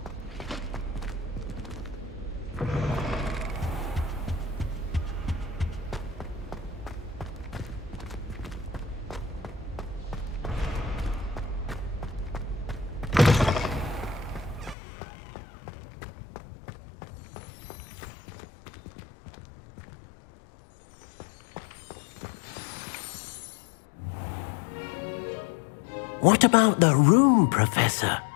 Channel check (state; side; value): drops out; right; at 14.8 s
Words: What about the room, Professor?